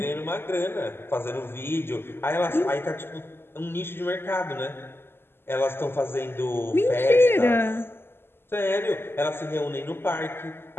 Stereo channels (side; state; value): right; late; 0.11 ms